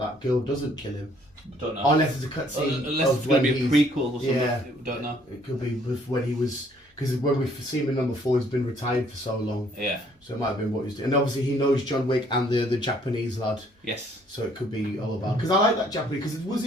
girl doesn't kill him. Don't know. Unless it's a cutscene. Unless it's going to be a prequel or something. Yeah. Don't know. It could be with when he was. Because when we've seen him in number 4, he's been retired for so long. Yeah. So it might have been what he's doing. And obviously he knows John Wick and the Japanese lad. Yes. So it could be all about. Because I like that Japanese. Because was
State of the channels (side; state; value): both; normal; correlation 0.63